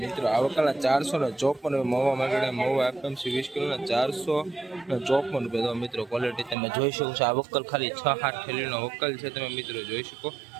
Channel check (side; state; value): left; drops out; at 6.6 s